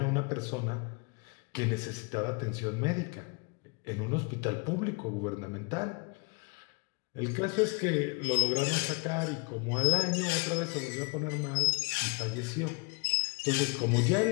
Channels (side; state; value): right; quieter; 31.7 dB